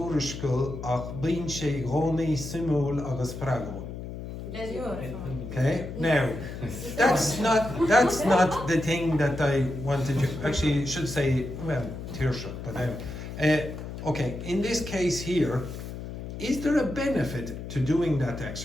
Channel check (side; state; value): left; noise; hum, 9 dB below the sound